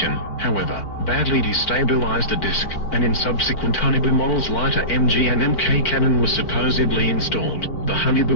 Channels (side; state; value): right; late; 4.5 ms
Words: however, badly destabilized the disc, and in subsequent Haunebu models lighter MG and MK cannon was supposedly installed. The